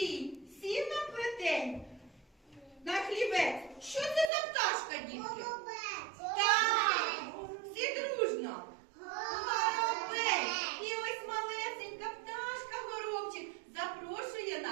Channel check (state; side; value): drops out; left; at 4.3 s